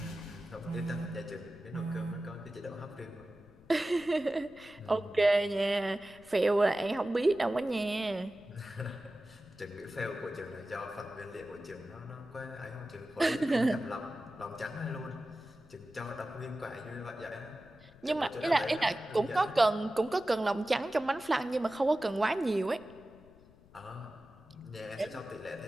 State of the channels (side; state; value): left; noise; rumble, 24 dB below the sound